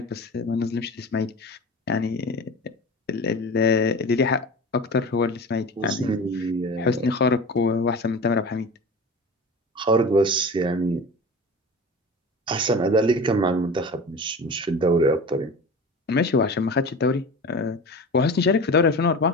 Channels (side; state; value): both; normal; correlation 0.33